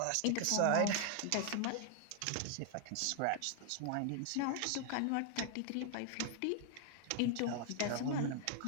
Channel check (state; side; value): different; both; correlation 0.00